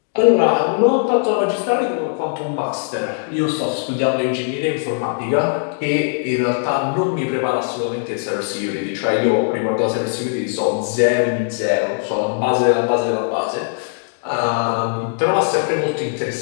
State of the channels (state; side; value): silent; right; digital silence